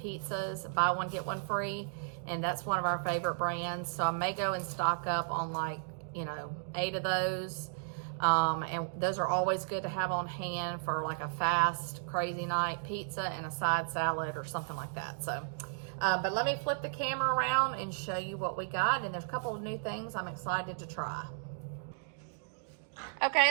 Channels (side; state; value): left; silent; digital silence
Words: buy one get one free. And that's one of our favorite brands. So I may go and stock up on 8 of those. And those are always good to have on hand for like a fast, crazy night pizza and a side salad or something like that. So, but let me flip the camera around and show you what we got. And there's a couple of new things I'm excited to try.